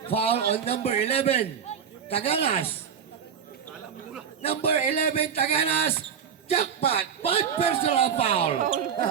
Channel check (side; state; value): left; quieter; 7.6 dB